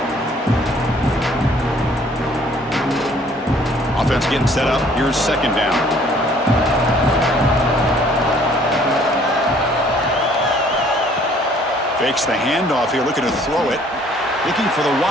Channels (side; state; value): both; normal; correlation 0.58